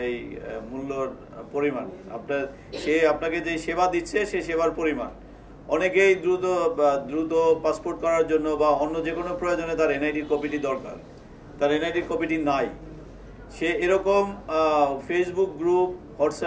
এই মূল্যর পরিমাণ। আপনাকে যে সেবা দিচ্ছে সে সেবার পরিমাণ। অনেকেই দ্রুত পাসপোর্ট করার জন্য বা অন্য যে কোনো প্রয়োজনে তার এনআইডির কপিটি দরকার, তার এনআইডির কপিটি নাই। সে এরকম ফেসবুক গ্রুপ,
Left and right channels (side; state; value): both; identical; correlation 1.00